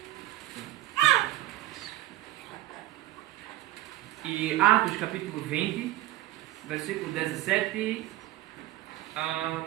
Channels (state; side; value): quieter; left; 16.0 dB